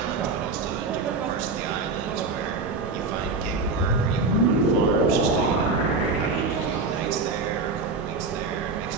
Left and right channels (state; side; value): quieter; left; 3.9 dB